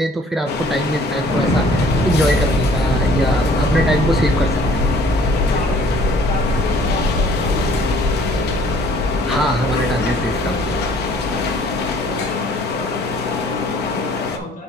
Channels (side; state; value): both; normal; correlation 0.56